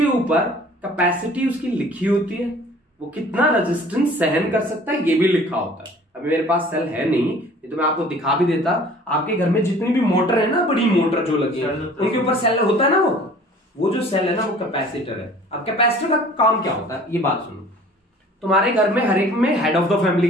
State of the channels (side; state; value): both; normal; correlation 0.49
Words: ऊपर कैपेसिटी उसकी लिखी होती है, वो कितना रेजिस्टेंस सहन कर सकता है ये भी लिखा होता है। अभी मेरे पास सेल है नहीं, तो मैं आपको दिखा भी देता। आपके घर में जितनी भी मोटर है ना, बड़ी मोटर जो लगी है उनके ऊपर सेल होता है ना, वो जो सेल है ना वो कैपेसिटर है। अब कैपेसिटर का काम क्या होता है ये बात सुनो। तुम्हारे घर में हर एक में हेड ऑफ द